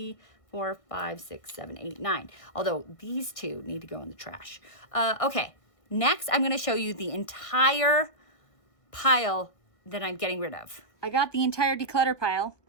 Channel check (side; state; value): right; late; 1.6 ms